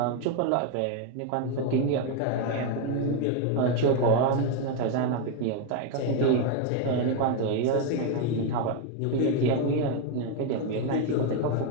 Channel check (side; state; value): both; different; correlation 0.01